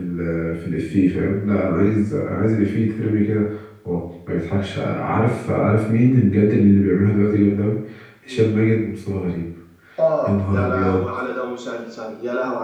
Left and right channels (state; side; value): identical; both; correlation 1.00